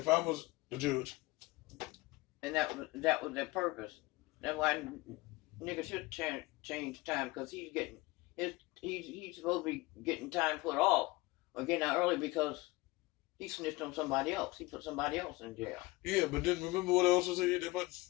I was the judge. And that was their purpose. That's why niggas should change time, because he's supposed to be getting time put off or getting out early because he snitched on somebody else. He put somebody else in jail. Yeah, but then remember what I also said?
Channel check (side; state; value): right; quieter; 21.5 dB